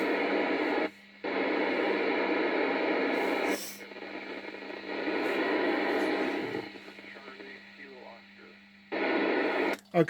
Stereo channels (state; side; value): identical; both; correlation 1.00